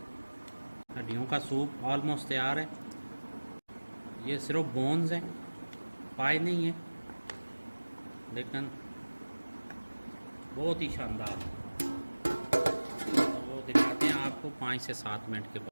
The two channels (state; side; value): inverted; both; correlation -1.00